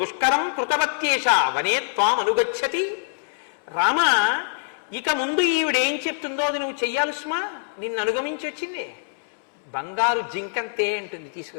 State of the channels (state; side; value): silent; right; 62 dB below the other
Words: కృతవత్యేష వనే త్వాం అనుగచ్చతి. రామ, ఇక ముందు ఈవిడేం చెప్తుందో అది నువ్వు చెయ్యాలి సుమా. నిన్ను అనుగమించి వచ్చింది. బంగారు జింకంతే అంటుంది,